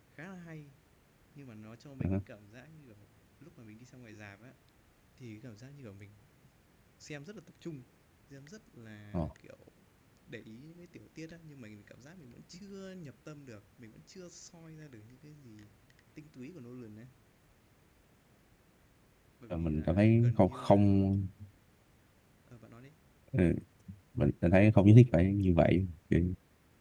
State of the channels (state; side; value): identical; both; correlation 1.00